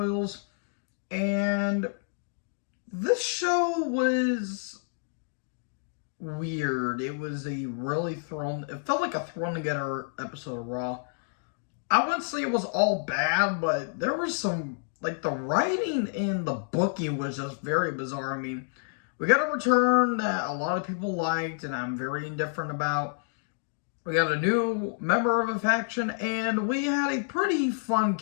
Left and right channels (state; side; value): silent; right; digital silence